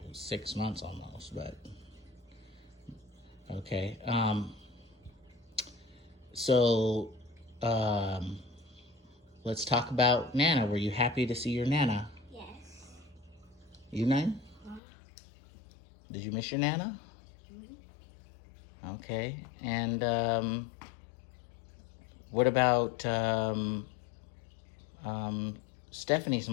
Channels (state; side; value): drops out; right; at 14.8 s